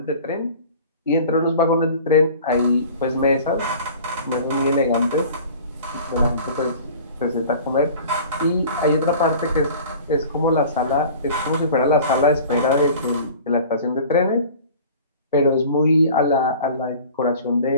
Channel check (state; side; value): inverted; both; correlation -0.43